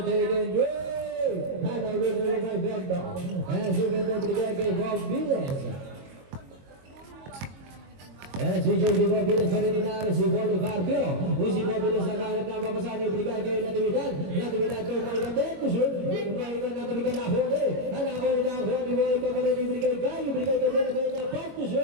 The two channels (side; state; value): left; late; 22 ms